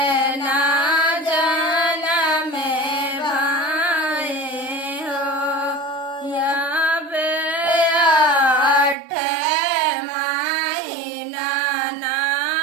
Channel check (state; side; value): drops out; left; at 9.0 s